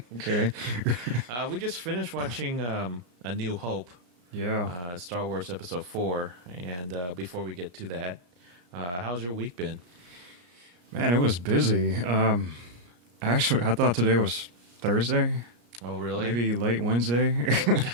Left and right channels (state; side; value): late; left; 34 ms